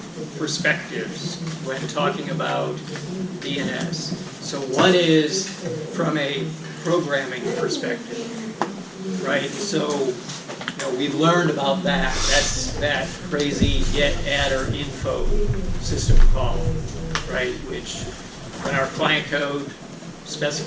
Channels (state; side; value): identical; both; correlation 1.00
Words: perspectives when talking about DNS. So one is from a programming perspective, right? So we've learned about that. That's that crazy get, add, or info system call, right? Which, when our client code